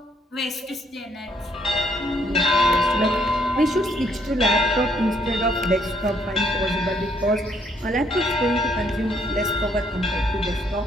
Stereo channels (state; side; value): normal; both; correlation 0.68